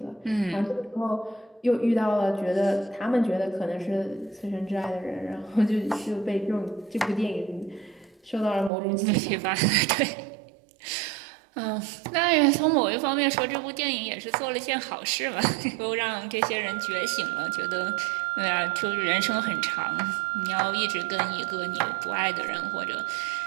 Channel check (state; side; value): drops out; left; at 8.7 s